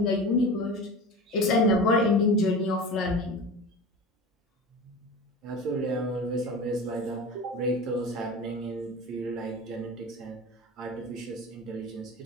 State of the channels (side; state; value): both; normal; correlation 0.32